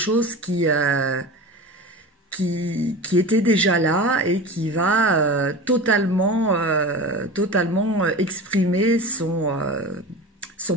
qui était déjà là et qui va totalement exprimer son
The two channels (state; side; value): normal; both; correlation 0.32